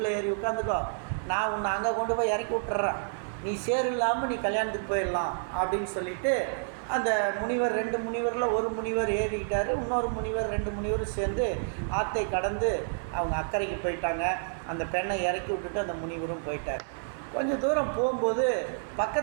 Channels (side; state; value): left; silent; digital silence